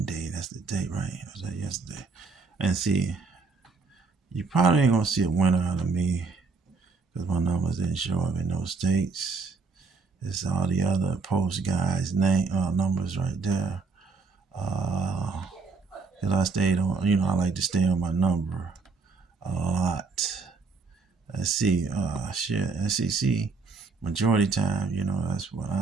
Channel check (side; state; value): left; quieter; 4.5 dB